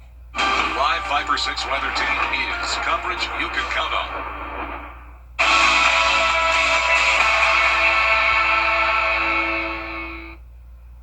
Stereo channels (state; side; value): identical; both; correlation 1.00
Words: The live 5 for 6 weather team is coverage you can count on.